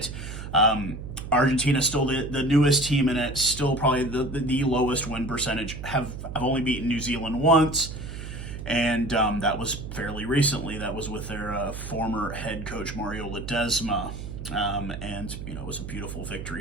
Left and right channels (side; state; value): right; noise; hum, 9 dB below the sound